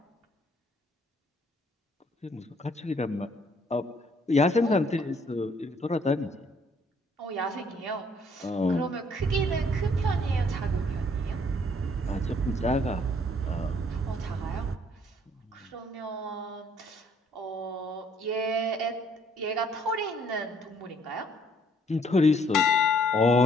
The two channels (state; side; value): normal; both; correlation 0.64